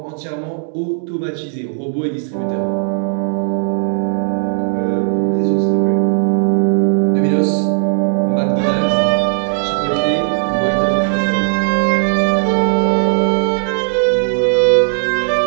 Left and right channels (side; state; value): left; silent; 65 dB below the other